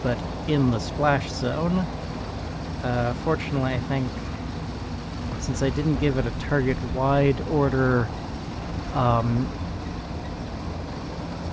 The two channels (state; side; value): identical; both; correlation 1.00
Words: but in the splash zone. Fortunately, I think, since I didn't give it a target wide order,